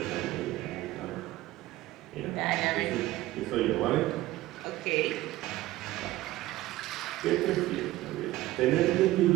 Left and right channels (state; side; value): quieter; left; 16.7 dB